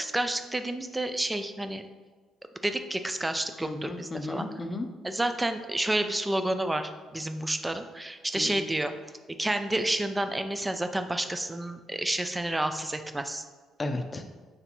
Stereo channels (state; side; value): normal; both; correlation 0.94